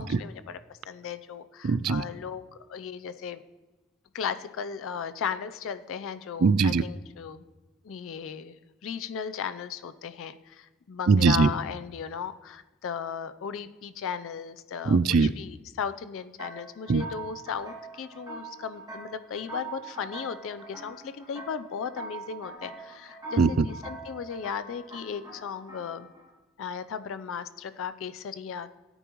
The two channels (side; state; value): both; normal; correlation 0.46